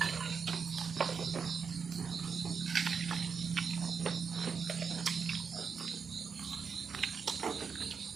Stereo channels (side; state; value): left; quieter; 6.0 dB